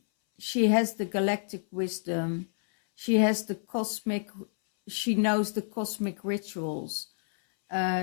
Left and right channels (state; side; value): silent; right; 59 dB below the other